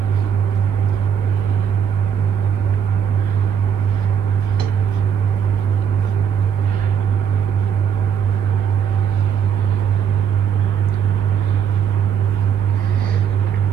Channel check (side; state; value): left; quieter; 7.9 dB